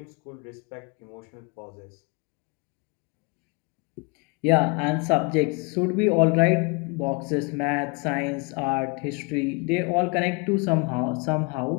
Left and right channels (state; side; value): quieter; right; 30.3 dB